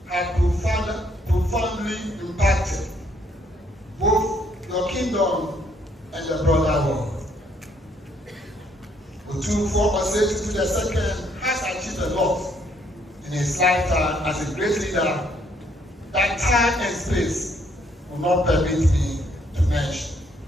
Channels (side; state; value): both; normal; correlation 0.68